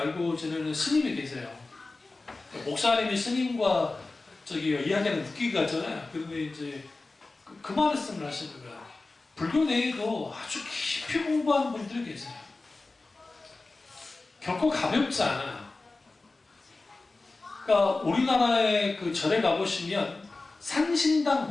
지내는 스님이 계세요. 목사님이 스님과 이야기하는 웃기가 같잖아요. 그런데 이제 그 말씀을 하시는 거예요. 불교 내에도 아주 깊이 공부하는 분들이 계세요. 결코 가볍지 않아요. 그러니까 우리나라의 그 절에 가보시면 산신당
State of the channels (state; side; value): quieter; right; 3.4 dB